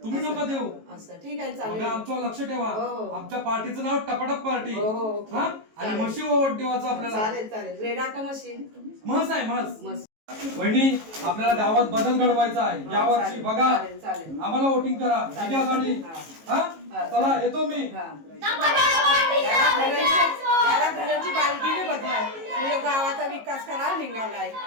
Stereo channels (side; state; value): left; late; 18 ms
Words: तुम्ही नका देऊ. असं ठीक आहे, चालेल. बघा आमच्यावर लक्ष ठेवा. हो. आमच्या पार्टीचं नाव टपाटप पार्टी. हो. हा आणि म्हशी ओवट देवाचं आपल्याला. चालेल. रेडा का मशीन? म्हस आहे म्हस. मस्त. वहिनी आपल्याला गावात बदल घडवायचा आहे या वर्षी. बघा चालेल. आम्हाला वोटिंग करा. विजयासाठी. हा चला येतो मी. टपाटप पार्टीचा विजय असो. याला घराची बालदीने बदलाय, गावाचा विकास करायला निघालाय.